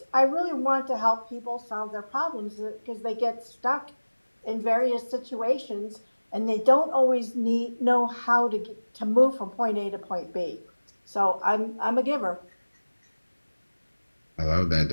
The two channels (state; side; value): inverted; both; correlation -1.00